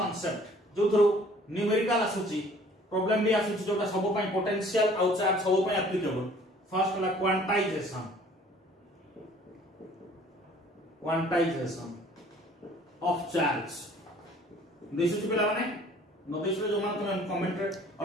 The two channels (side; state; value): both; normal; correlation 0.54